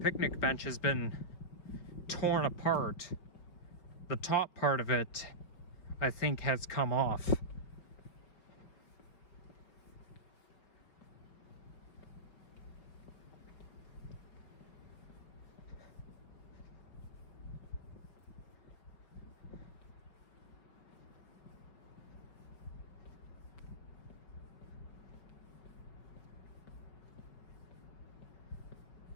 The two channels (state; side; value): late; right; 5.3 ms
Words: bench has been torn apart. The top part of it, I think, has come off.